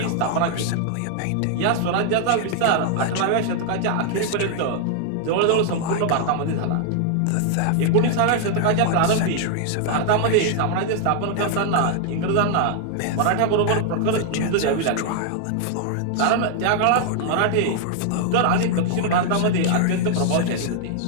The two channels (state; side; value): different; both; correlation 0.00